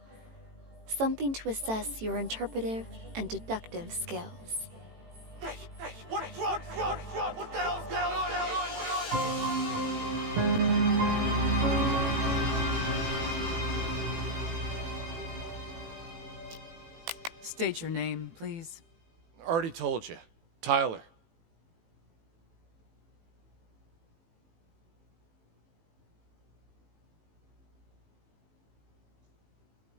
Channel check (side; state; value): left; late; 18 ms